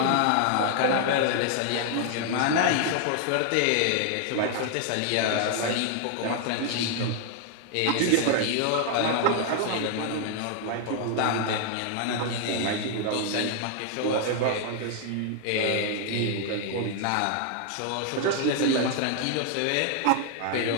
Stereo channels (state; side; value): different; both; correlation 0.00